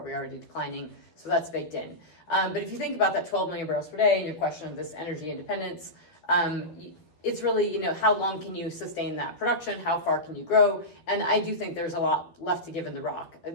already declining, so that's baked in. But if you think about that 12 million barrels per day and your question of this energy independence, it's really, how long can you sustain that production? How far can you grow? And I do think there's a lot left to give in the rock.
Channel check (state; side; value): late; right; 13 ms